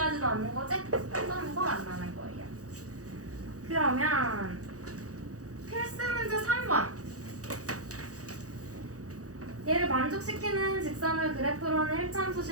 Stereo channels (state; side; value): late; left; 0.66 ms